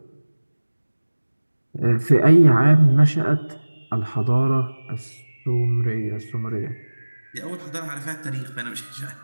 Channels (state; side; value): inverted; both; correlation -1.00